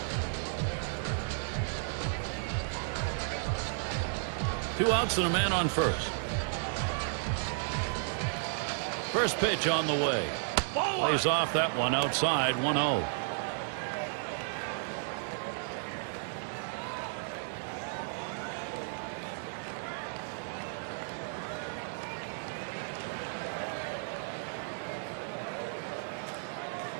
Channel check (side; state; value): left; silent; digital silence